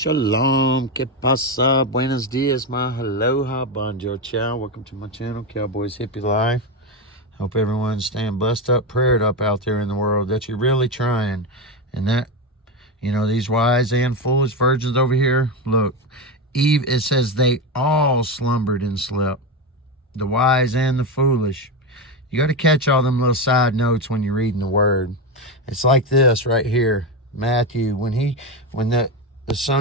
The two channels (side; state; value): both; normal; correlation 0.14